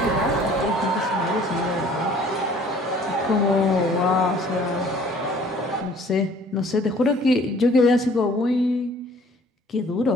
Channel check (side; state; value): both; normal; correlation 0.54